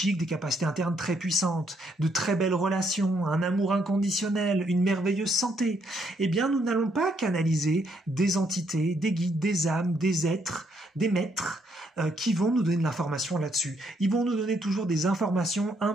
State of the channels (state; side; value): normal; both; correlation 0.73